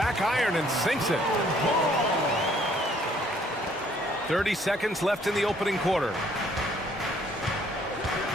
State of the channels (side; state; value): both; normal; correlation 0.62